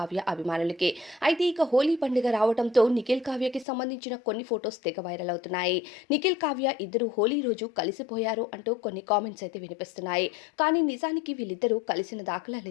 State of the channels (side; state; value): right; drops out; at 3.7 s